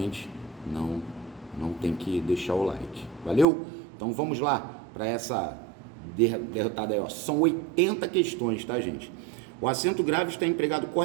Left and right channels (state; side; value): drops out; left; at 3.5 s